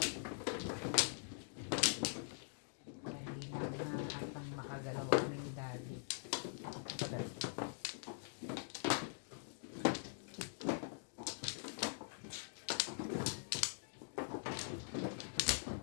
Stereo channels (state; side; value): silent; right; digital silence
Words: Atang makagalaw kami ni Daddy.